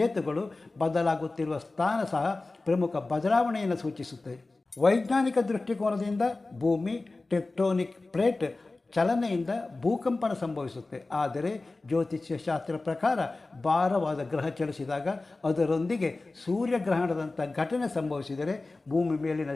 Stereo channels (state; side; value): quieter; right; 3.3 dB